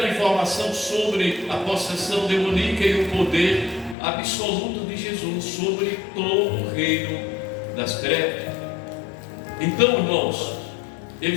informação sobre a possessão demoníaca e o poder absoluto de Jesus sobre todo o reino das trevas. Então, irmãos,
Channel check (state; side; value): drops out; right; at 4.0 s